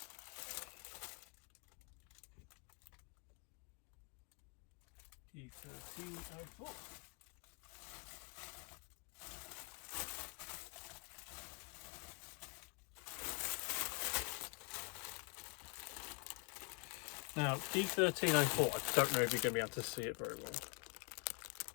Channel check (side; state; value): right; quieter; 35.0 dB